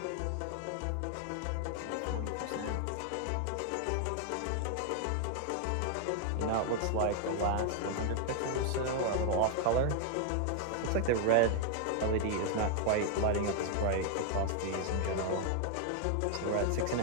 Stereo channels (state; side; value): different; both; correlation 0.00